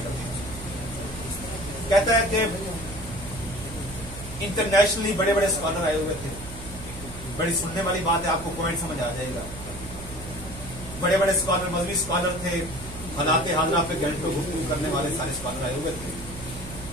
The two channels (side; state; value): right; noise; hum, 13 dB below the sound